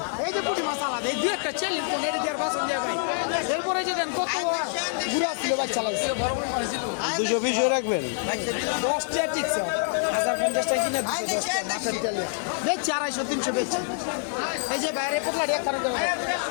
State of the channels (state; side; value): silent; right; 57 dB below the other